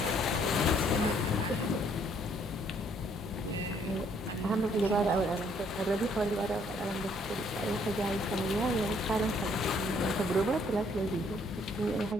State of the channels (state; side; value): normal; both; correlation 0.65